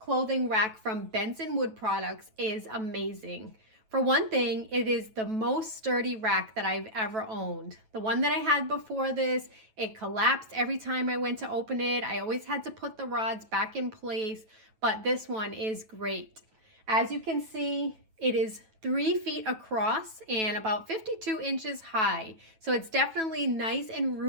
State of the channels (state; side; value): late; left; 9.2 ms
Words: rack from Benson Wood Products is amazing. For one thing, it is the most sturdy rack that I've ever owned. The one that I had before this, it collapsed every time I went to open it. I always had to put the rods back in place, but this one is great. As you can see, it is 3 feet across and about 52 inches high. So it's definitely nice and